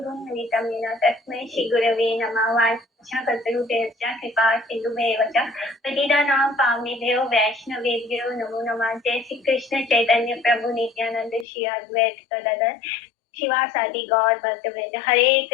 येन तस्मै श्रीगुरवे नमः। वाञ्छाकल्पतरुभ्यश्च कृपा सिन्धुभ्येव च पतितानां पावनेभ्यो वैष्णवेभ्यो नमो नमः। जय श्री कृष्ण चैतन्य प्रभु नित्यानंद श्री अद्वैत गदाधर शिवासादि गौर भक्तवृंद। हरे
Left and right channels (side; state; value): right; drops out; at 11.5 s